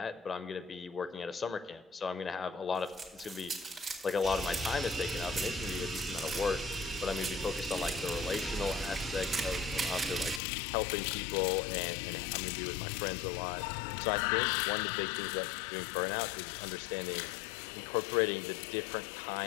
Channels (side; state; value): right; drops out; at 10.4 s